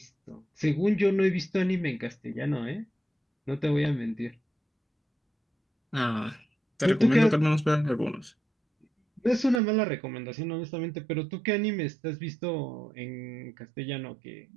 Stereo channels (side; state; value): left; drops out; at 9.6 s